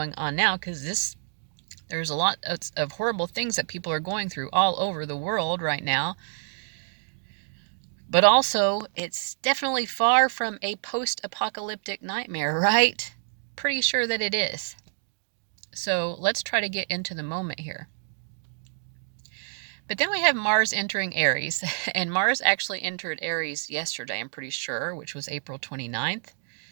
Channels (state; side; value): silent; left; digital silence